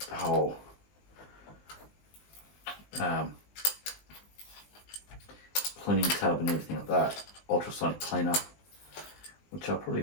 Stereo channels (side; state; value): right; late; 20 ms